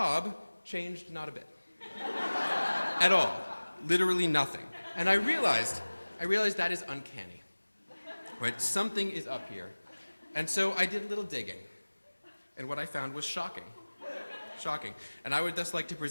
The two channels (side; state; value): both; inverted; correlation -1.00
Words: changed not a bit. At all. Literally nothing. And I realized that is uncanny. Right? Something is up here. And so I did a little digging. And what I found was shocking. Shocking. And I would thus like to